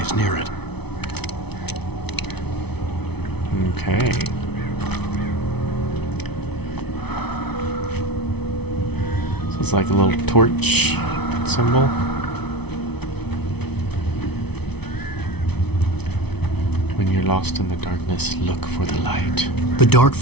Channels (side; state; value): right; late; 0.99 ms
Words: near it. Okay. So it's like a little torch symbol. When When you're lost in the darkness, look for the light. The dark